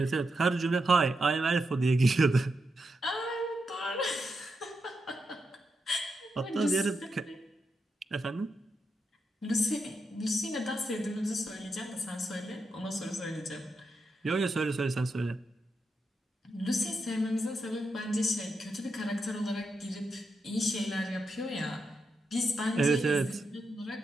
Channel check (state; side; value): normal; both; correlation 0.85